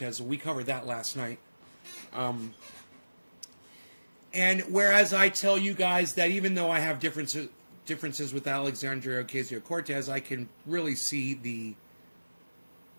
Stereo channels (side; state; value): both; inverted; correlation -1.00